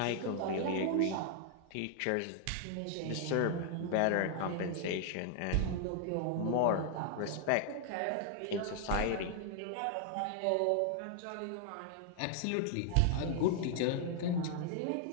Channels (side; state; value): both; different; correlation 0.00